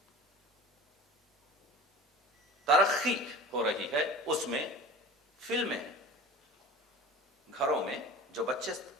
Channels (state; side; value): normal; both; correlation 0.39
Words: ترقی ہو رہی ہے، اس میں فلمیں، گھروں میں جو بچے